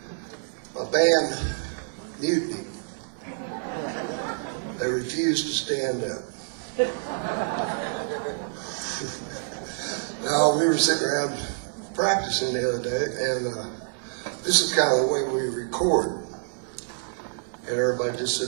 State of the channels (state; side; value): silent; left; digital silence